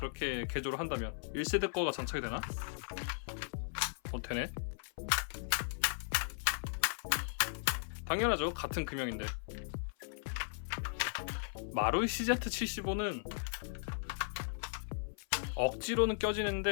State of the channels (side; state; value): right; silent; 53 dB below the other